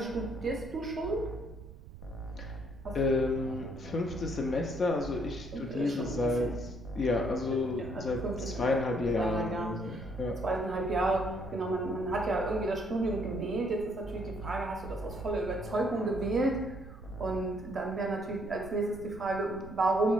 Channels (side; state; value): right; noise; rumble, 16 dB below the sound